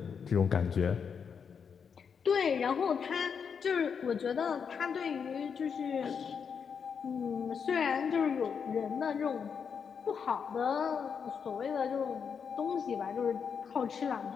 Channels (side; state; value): right; quieter; 6.6 dB